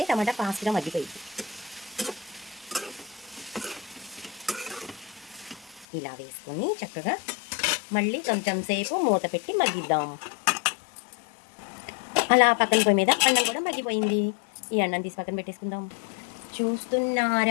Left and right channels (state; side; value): drops out; right; at 5.9 s